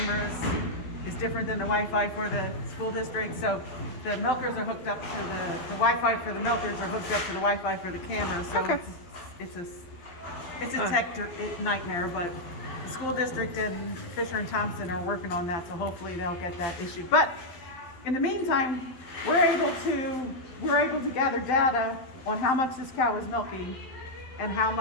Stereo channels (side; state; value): right; late; 12 ms